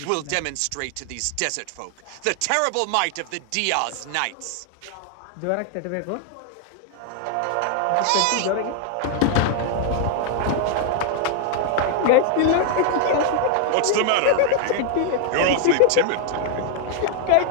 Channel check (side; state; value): both; different; correlation 0.00